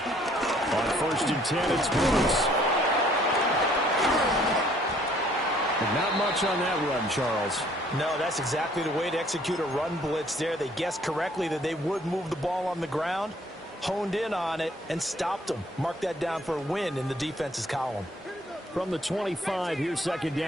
On 1st and 10, it's Brooks. And not much on that run, Charles. No, that's exactly the way to execute a run blitz there. They guessed correctly that they would move the ball on the ground, honed in on it, and stopped them. Mark that down for a win in the defense's column. From the 25, here's 2nd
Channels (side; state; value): both; normal; correlation 0.61